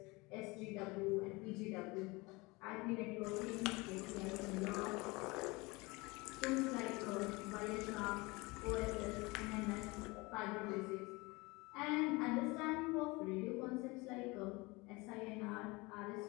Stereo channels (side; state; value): right; quieter; 24.5 dB